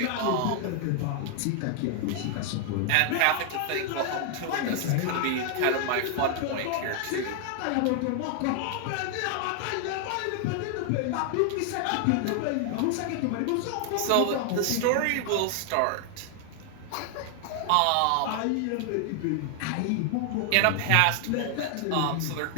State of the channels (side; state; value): both; different; correlation 0.00